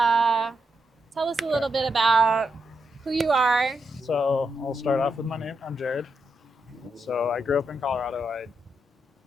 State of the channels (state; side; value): normal; both; correlation 0.83